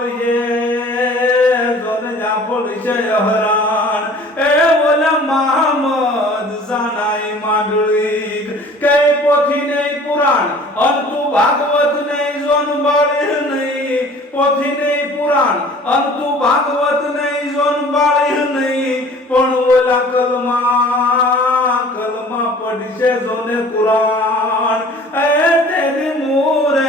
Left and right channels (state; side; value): normal; both; correlation 0.48